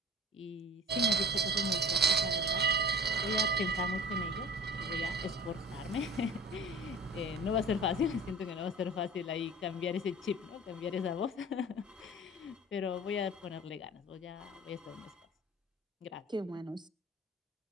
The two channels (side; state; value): both; normal; correlation 0.41